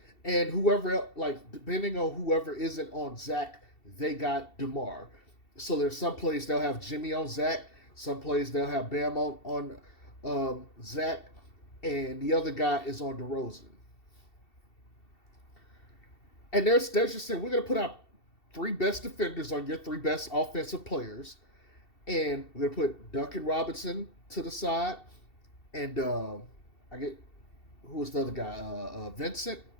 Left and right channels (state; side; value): late; right; 2.7 ms